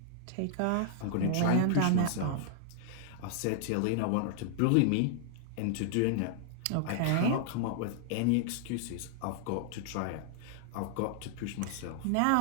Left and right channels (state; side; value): different; both; correlation -0.01